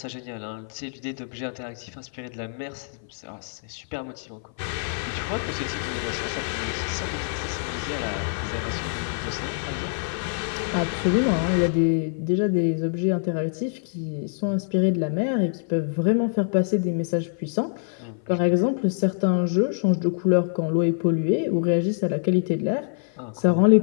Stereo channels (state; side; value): silent; right; 55 dB below the other